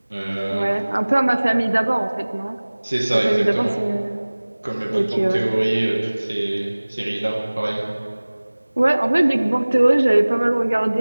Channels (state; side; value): inverted; both; correlation -1.00